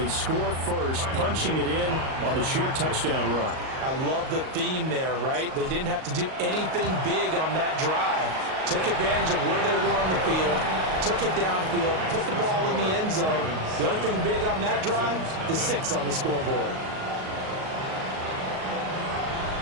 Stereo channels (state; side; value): late; left; 38 ms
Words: score first, punching it in on the short touchdown run. I love the theme there, right? They didn't have to do anything big on that drive. Took advantage of where they were on the field, took it downfield, put the ball in the end zone. The only thing big on that drive, the 6 on the scoreboard.